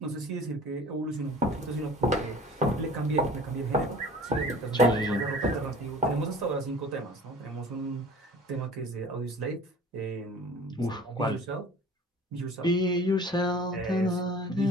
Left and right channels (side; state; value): both; normal; correlation 0.45